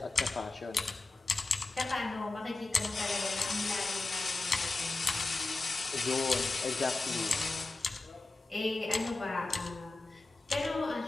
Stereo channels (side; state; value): right; quieter; 3.2 dB